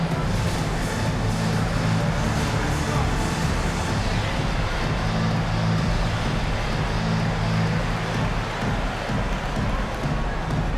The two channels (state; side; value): identical; both; correlation 1.00